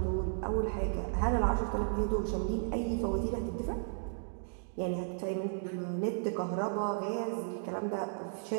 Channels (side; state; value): left; silent; digital silence